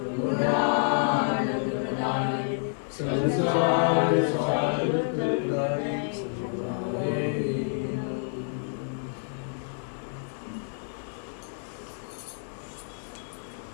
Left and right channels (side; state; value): right; silent; digital silence